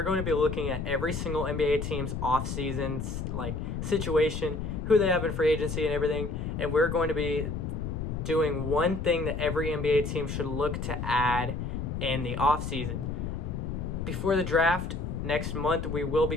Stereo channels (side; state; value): left; noise; rumble, 4 dB below the sound